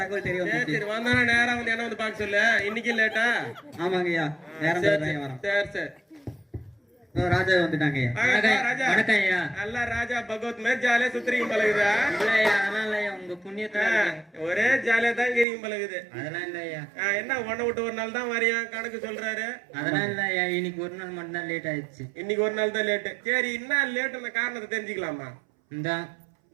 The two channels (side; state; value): left; drops out; at 15.5 s